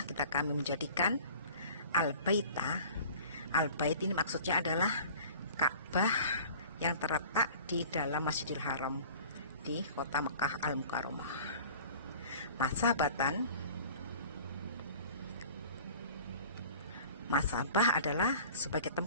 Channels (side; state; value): both; inverted; correlation -0.45